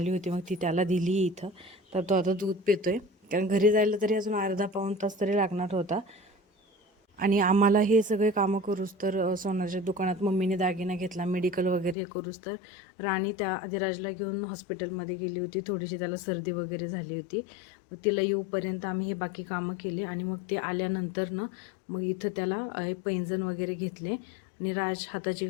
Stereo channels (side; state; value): right; drops out; at 12.0 s